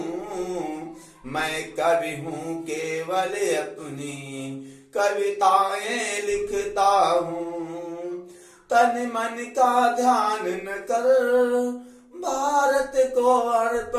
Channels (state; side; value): identical; both; correlation 1.00